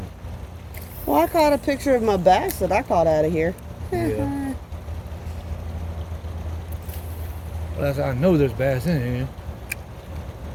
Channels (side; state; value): both; identical; correlation 1.00